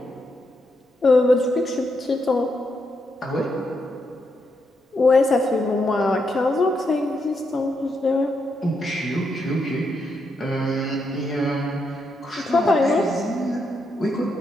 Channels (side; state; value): both; normal; correlation 0.81